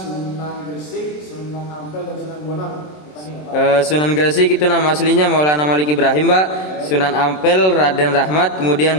Gresik, Sunan Ampel dan Sunan Bonang. Sunan Gresik itu nama aslinya Maulana Malik Ibrahim, Pak. Sunan Ampel Raden Rahmat, kemudian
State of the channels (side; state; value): right; late; 27 ms